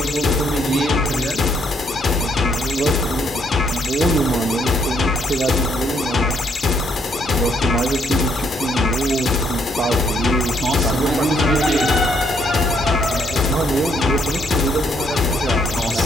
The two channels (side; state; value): both; normal; correlation 0.71